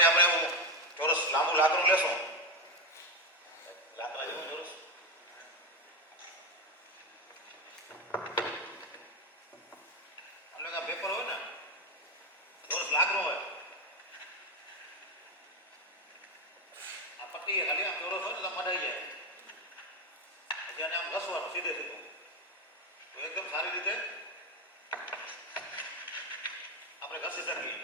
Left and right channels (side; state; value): both; normal; correlation 0.13